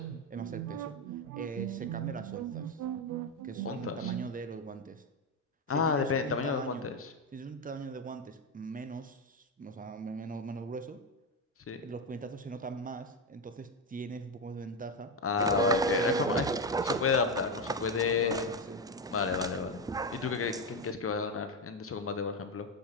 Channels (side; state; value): both; normal; correlation 0.11